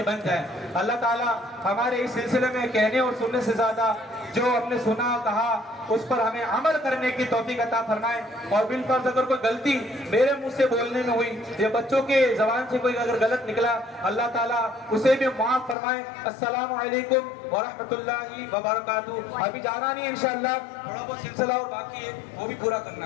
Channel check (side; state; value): right; drops out; at 15.8 s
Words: بن جائیں. اللہ تعالیٰ ہمارے اس سلسلے میں کہنے اور سننے سے زیادہ جو ہم نے سنا کہا اس پر ہمیں عمل کرنے کی توفیق عطا فرمائے. اور بالفرض اگر کوئی غلطی میرے منہ سے بولنے میں ہوئی یا بچوں کے زبان سے کوئی اگر غلط نکلا اللہ تعالیٰ اسے بھی معاف فرمائے. السلام علیکم ورحمۃ اللہ وبرکاتہ. ابھی جانا نہیں انشاءاللہ، تھوڑا بہت سلسلہ اور باقی ہے وہ بھی پورا کرنا